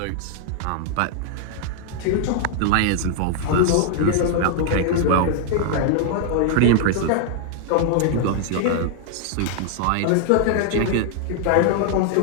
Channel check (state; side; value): different; both; correlation 0.00